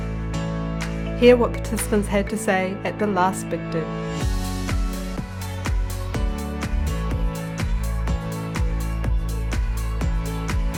Hear what participants had to say at the last Big Do.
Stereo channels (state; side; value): identical; both; correlation 1.00